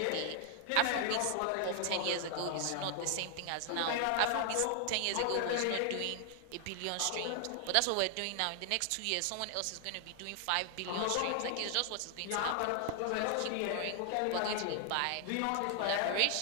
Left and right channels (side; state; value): both; different; correlation 0.00